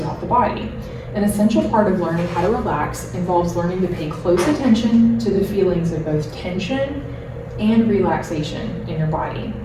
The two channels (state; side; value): identical; both; correlation 1.00